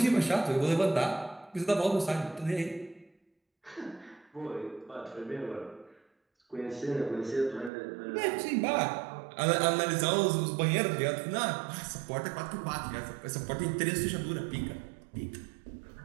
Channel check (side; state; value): left; drops out; at 7.7 s